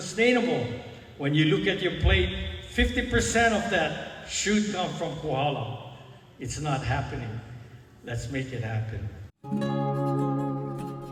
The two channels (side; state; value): both; identical; correlation 1.00